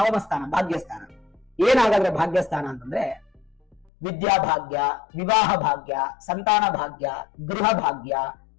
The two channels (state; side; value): drops out; right; at 3.9 s